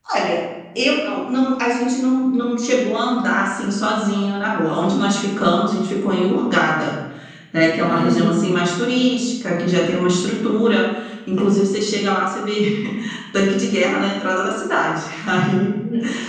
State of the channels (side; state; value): both; identical; correlation 1.00